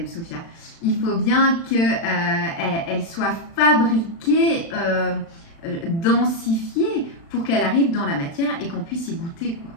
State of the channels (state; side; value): late; right; 36 ms